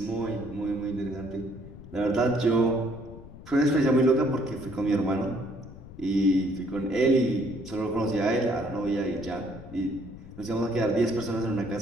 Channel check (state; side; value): noise; left; rumble, 16 dB below the sound